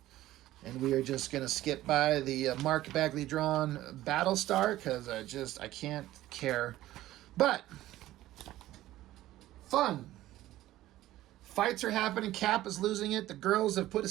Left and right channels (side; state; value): left; quieter; 15.1 dB